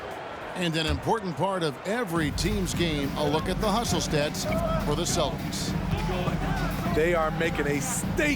And an important part of every team's game, a look at the hustle stats for the Celtics. They are making a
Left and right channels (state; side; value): identical; both; correlation 1.00